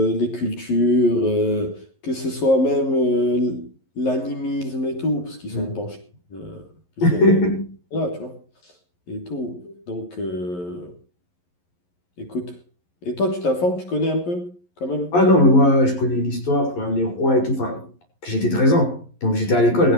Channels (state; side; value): late; right; 11 ms